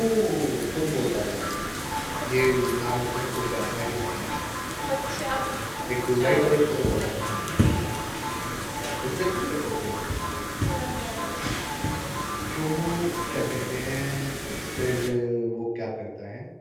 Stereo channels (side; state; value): both; identical; correlation 1.00